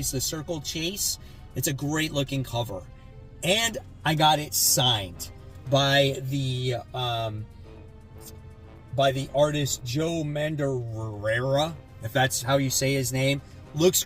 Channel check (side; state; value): both; identical; correlation 1.00